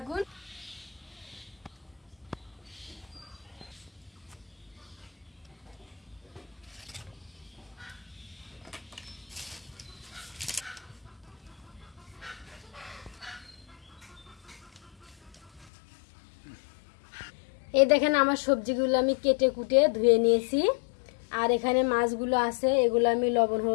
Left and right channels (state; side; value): drops out; right; at 15.7 s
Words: এই দেখেন, আমার সবজিগুলো আমি কেটে কুটে ধুয়ে নিয়েছি। আর এখানে মাছগুলো আছে, এগুলো আমি লবণ